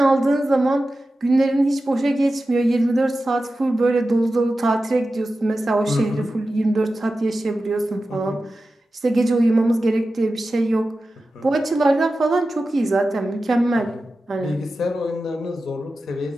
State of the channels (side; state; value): both; normal; correlation 0.93